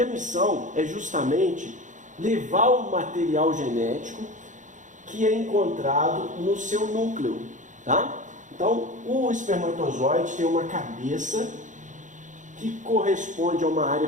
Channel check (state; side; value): late; left; 0.36 ms